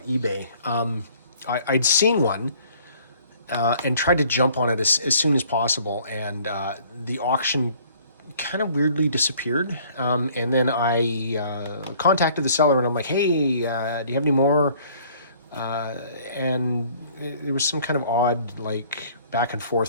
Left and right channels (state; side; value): inverted; both; correlation -0.56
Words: eBay. I'd seen one and tried to jump on it as soon as possible, and the auction kind of weirdly disappeared. And then I contacted the seller, and I'm like, "Hey, do you have any more?" And there was some kind of odd like back and